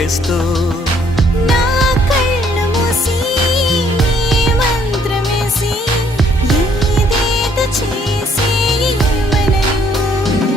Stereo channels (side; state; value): both; normal; correlation 0.65